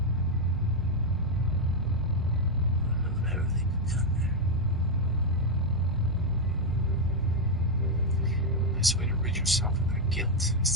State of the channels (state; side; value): normal; both; correlation 0.02